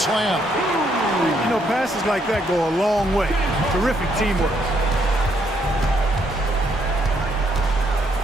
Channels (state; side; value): normal; both; correlation 0.72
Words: You know, passes like that go a long way. Terrific teamwork.